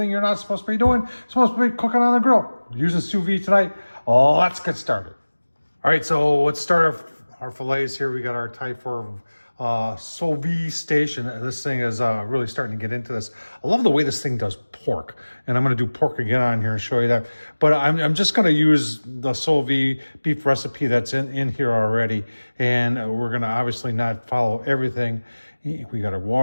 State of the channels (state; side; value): inverted; both; correlation -1.00